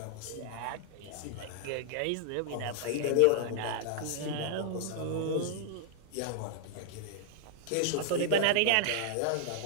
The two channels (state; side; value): different; both; correlation -0.01